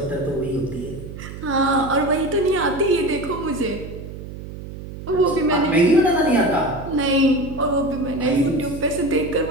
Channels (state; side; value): noise; right; hum, 11 dB below the sound